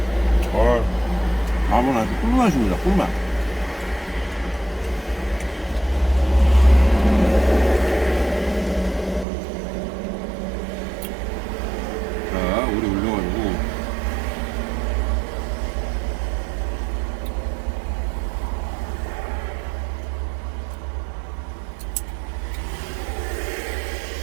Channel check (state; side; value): drops out; left; at 9.2 s